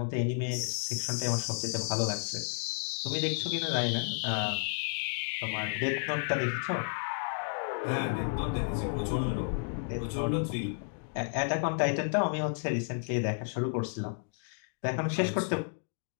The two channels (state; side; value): silent; right; digital silence